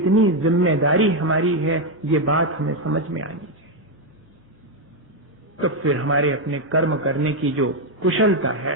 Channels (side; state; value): both; normal; correlation 0.04